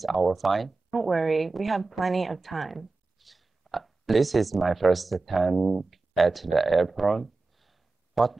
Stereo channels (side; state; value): left; quieter; 3.6 dB